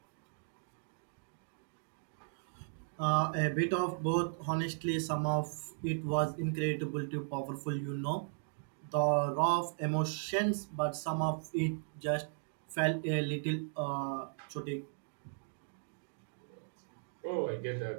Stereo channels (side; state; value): left; silent; digital silence